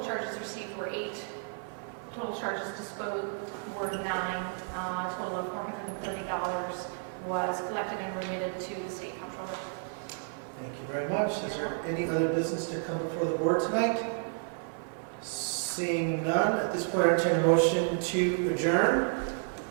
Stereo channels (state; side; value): silent; left; 57 dB below the other